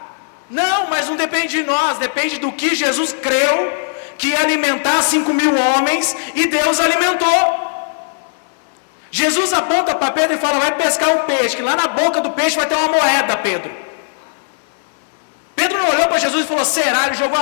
Não, mas não depende de nós, depende do que Jesus creu, que ia alimentar 5.000 homens, e Deus alimentou. Jesus aponta para Pedro e fala, vai pescar um peixe, que lá na boca do peixe vai ter uma moeda, Pedro. Pedro não olhou para Jesus e falou, será? Ele jogou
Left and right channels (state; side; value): silent; right; 58 dB below the other